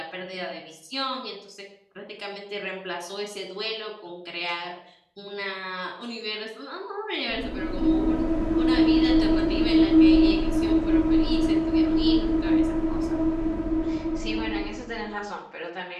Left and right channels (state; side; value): identical; both; correlation 1.00